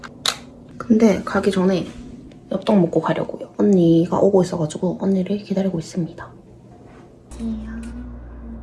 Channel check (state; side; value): identical; both; correlation 1.00